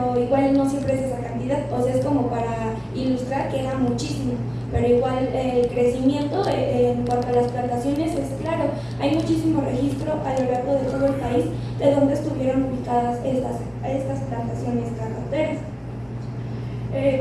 igual no siempre es esa cantidad, o sea, es como para ilustrar que era muchísimo, pero igual el crecimiento en cuanto a las plantaciones es claro, hay muchísimo registro a lo largo de todo el país de donde estuvieron ubicadas estas plantaciones cacauteras.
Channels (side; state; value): both; identical; correlation 1.00